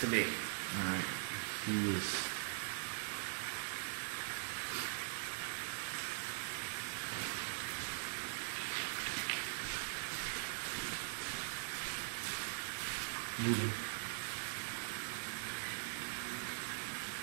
to me. Alright. He is. Moving.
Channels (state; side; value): silent; left; digital silence